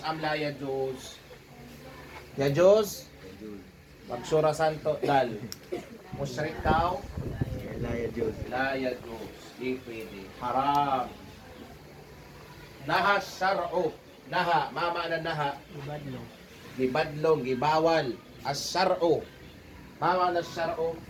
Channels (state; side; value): identical; both; correlation 1.00